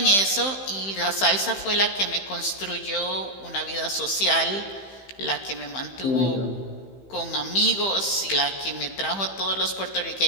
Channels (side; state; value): right; late; 15 ms